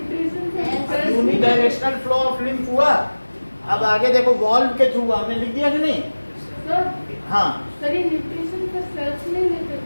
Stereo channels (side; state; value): both; inverted; correlation -1.00